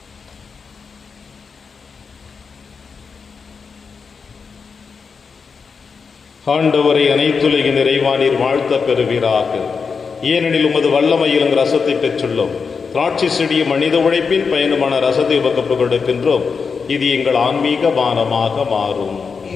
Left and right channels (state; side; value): quieter; right; 5.4 dB